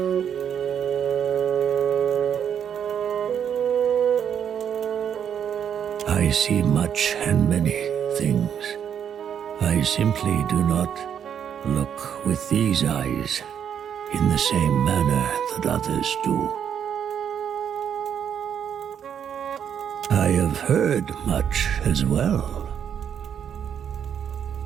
I see much and many things. I simply do not look with these eyes in the same manner that others do. I have heard much as well.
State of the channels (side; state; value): left; quieter; 8.5 dB